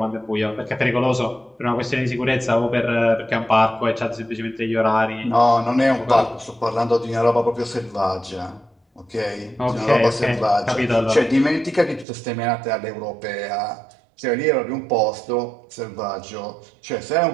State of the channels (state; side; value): drops out; left; at 12.1 s